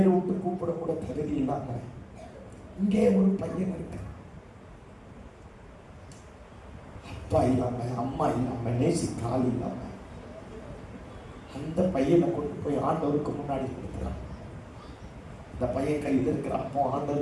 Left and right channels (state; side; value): identical; both; correlation 1.00